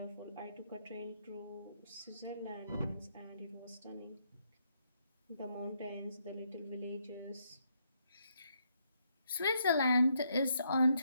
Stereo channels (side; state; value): both; inverted; correlation -0.76